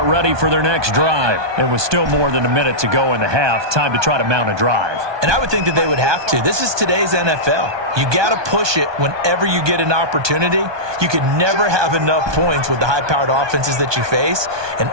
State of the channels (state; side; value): late; left; 1.2 ms